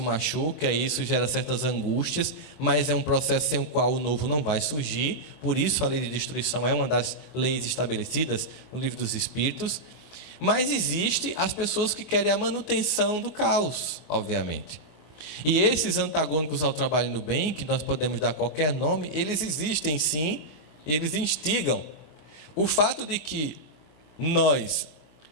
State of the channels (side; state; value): right; late; 24 ms